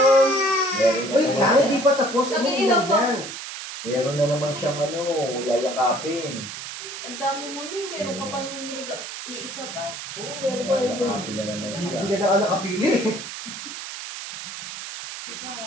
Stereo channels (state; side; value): noise; right; hiss, 9 dB below the sound